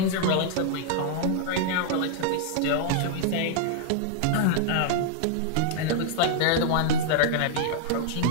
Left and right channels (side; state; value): both; different; correlation -0.01